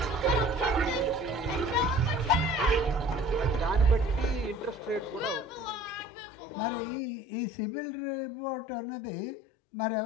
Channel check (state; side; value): drops out; right; at 6.1 s